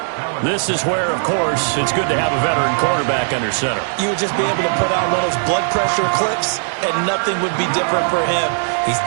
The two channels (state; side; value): silent; left; digital silence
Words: This is where, of course, it's good to have a veteran quarterback under center. You would just be able to put on one of those blood pressure clips, and nothing would be different for him. He's